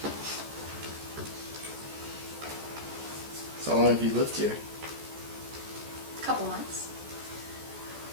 So how long have you lived here? Couple months.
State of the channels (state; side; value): late; left; 14 ms